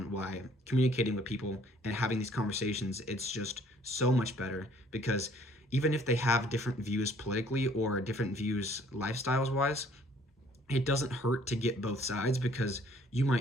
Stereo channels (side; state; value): both; normal; correlation 0.59